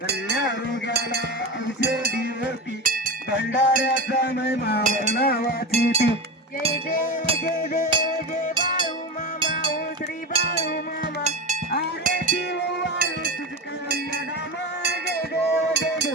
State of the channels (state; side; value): normal; both; correlation 0.23